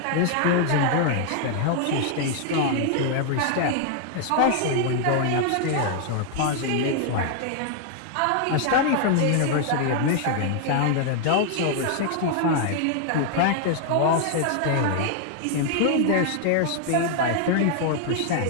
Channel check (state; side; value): different; both; correlation 0.00